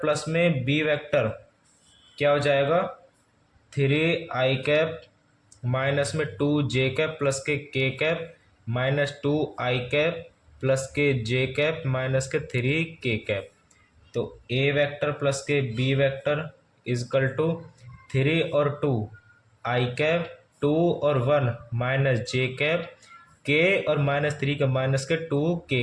में बी वेक्टर क्या हो जाएगा, 3 i कैप माइनस में 2 j कैप प्लस के k cap minus 2 i cap plus के j कैप माइनस के 3 k कैप। तो ए वेक्टर प्लस के बी वेक्टर इजकल टू 3 और 2 i कैप 2 और 1 माइनस j कैप k और -3 का माइनस के 2 k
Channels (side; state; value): both; identical; correlation 1.00